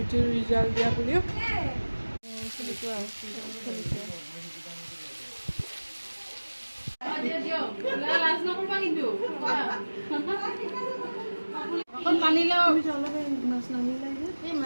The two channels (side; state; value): both; inverted; correlation -1.00